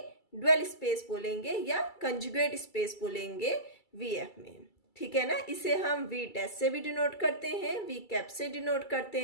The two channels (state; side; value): late; right; 2.3 ms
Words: डुअल स्पेस बोलेंगे या कंजुगेट स्पेस बोलेंगे VF में। ठीक है ना, इसे हम V डैश से भी डिनोट करते हैं, V कैप से डिनोट करते